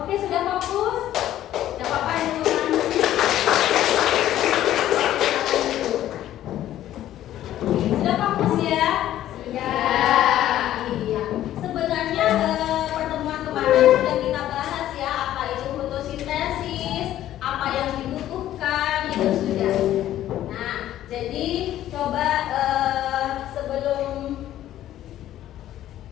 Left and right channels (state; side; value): quieter; right; 12.8 dB